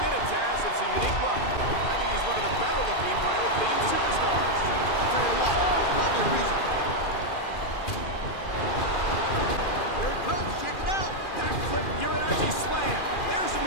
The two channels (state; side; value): late; right; 2.4 ms